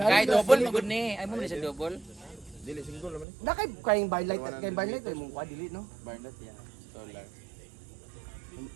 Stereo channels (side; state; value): left; drops out; at 3.2 s